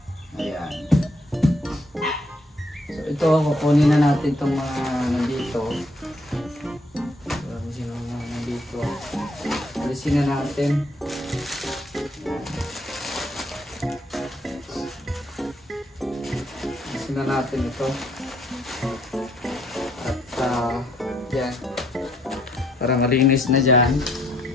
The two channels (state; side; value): normal; both; correlation 0.69